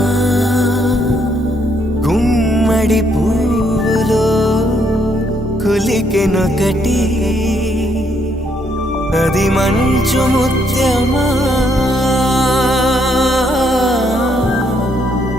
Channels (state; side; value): normal; both; correlation 0.72